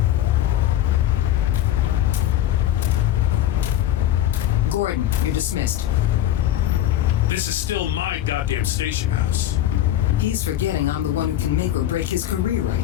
Gordon, you're dismissed. This is still my goddamn station house. He's forgetting I'm the one who can make or break his career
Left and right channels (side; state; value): right; quieter; 12.4 dB